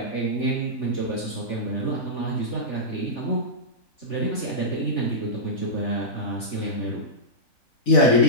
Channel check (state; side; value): late; right; 3.4 ms